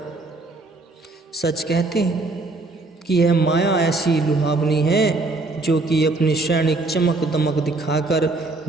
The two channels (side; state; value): left; quieter; 3.2 dB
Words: सच कहते हैं कि यह माया ऐसी लुभावनी है जो कि अपनी क्षणिक चमक दमक दिखाकर